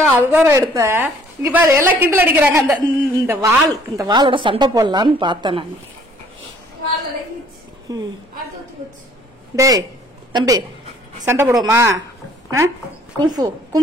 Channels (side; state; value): both; normal; correlation 0.58